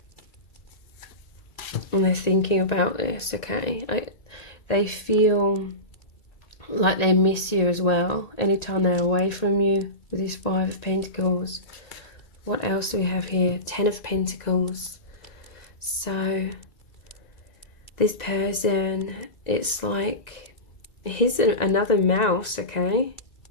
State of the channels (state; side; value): late; right; 2.0 ms